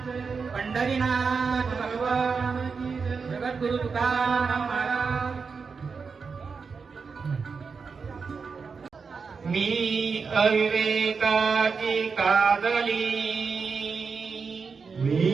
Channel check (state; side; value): quieter; left; 5.2 dB